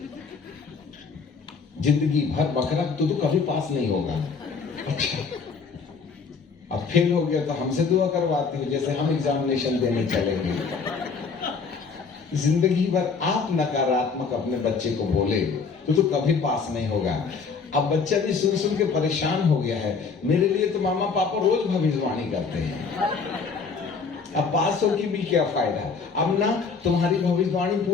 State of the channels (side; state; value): right; quieter; 5.2 dB